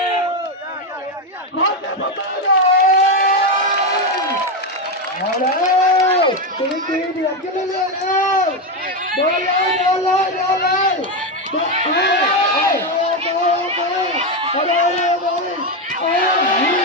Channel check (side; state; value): both; normal; correlation 0.09